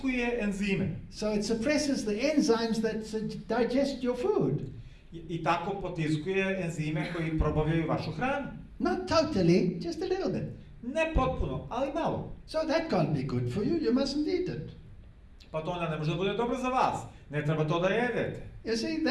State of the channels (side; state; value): both; identical; correlation 1.00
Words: enzime. So it suppresses the enzymes that digest your food. I tako potiskuje enzime koji probavljaju vašu hranu. Not totally, just a little bit. Ne potpuno, ali malo. So that can't be good for you, you mustn't eat it. Pa to onda ne može da bude dobro za vas. Ne treba to da jedete. You see,